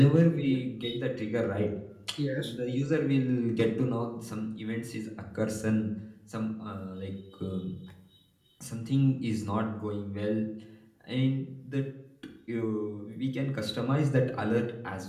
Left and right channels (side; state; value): both; identical; correlation 1.00